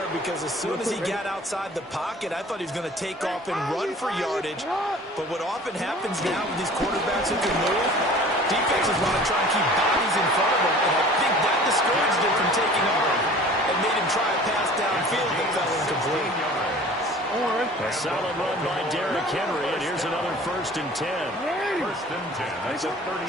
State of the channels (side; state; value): both; normal; correlation 0.46